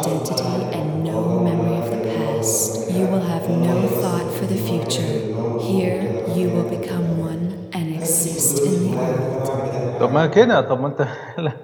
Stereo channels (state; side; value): identical; both; correlation 1.00